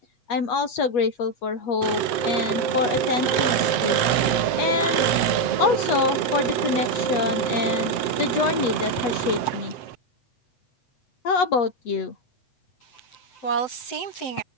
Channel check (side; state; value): right; late; 7.7 ms